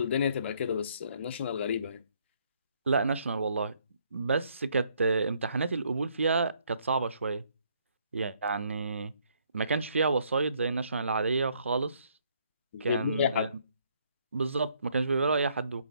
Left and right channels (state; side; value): inverted; both; correlation -0.68